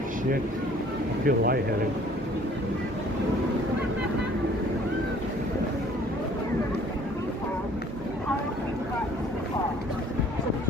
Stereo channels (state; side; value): normal; both; correlation 0.55